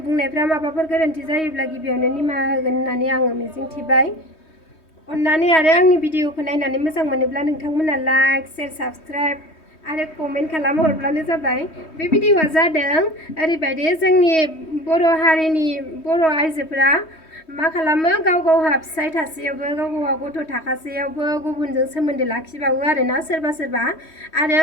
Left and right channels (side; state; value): right; late; 3.2 ms